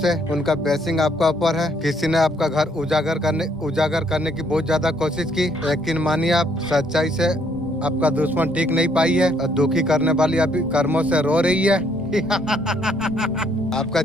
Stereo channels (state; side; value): normal; both; correlation 0.68